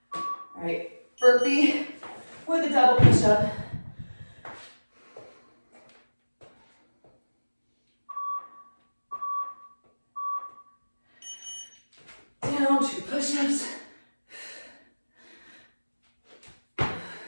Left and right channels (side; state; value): both; inverted; correlation -1.00